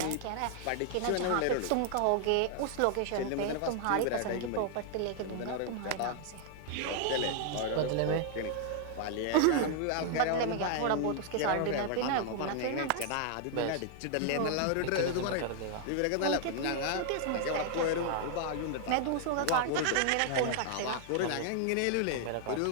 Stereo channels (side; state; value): both; different; correlation 0.00